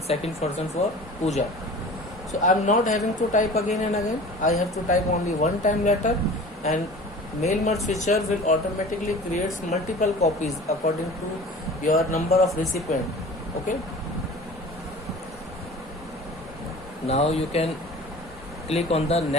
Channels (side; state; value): both; normal; correlation 0.41